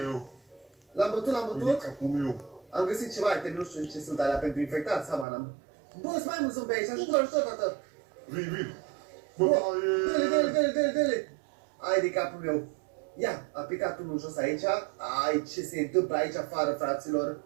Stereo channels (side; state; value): left; drops out; at 5.2 s